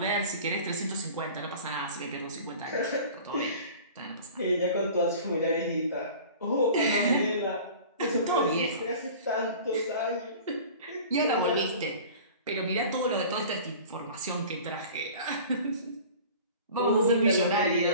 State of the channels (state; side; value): inverted; both; correlation -0.42